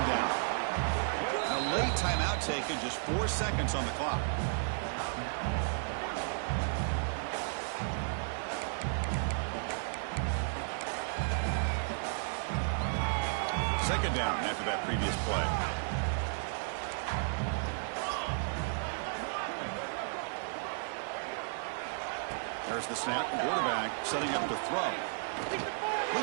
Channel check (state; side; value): silent; left; digital silence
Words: down. And a late timeout taken, just 4 seconds on the clock. Second down after that previous play. There's the snap. Quarterback setting up to throw.